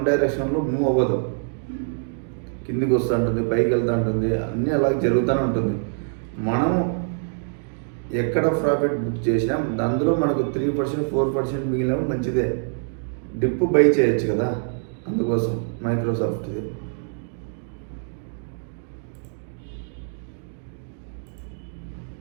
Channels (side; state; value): left; silent; digital silence